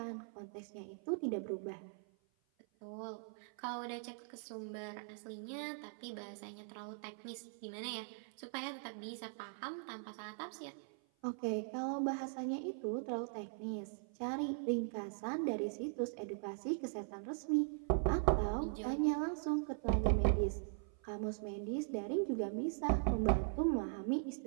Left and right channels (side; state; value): left; silent; 51 dB below the other